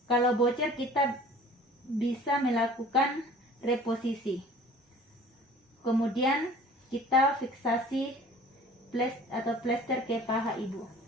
kalau bocor kita bisa melakukan reposisi. Kemudian kita fiksasi plester ke paha ibu.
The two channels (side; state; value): both; normal; correlation 0.47